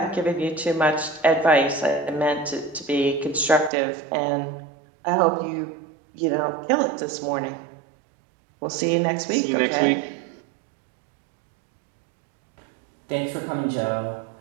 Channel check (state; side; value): drops out; left; at 3.7 s